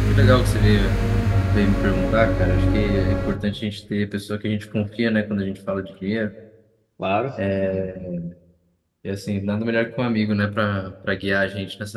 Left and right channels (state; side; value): identical; both; correlation 1.00